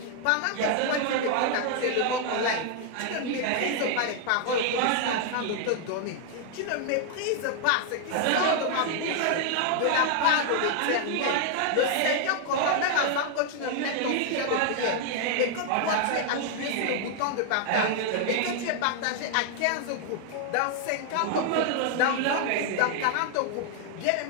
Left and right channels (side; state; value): both; different; correlation 0.00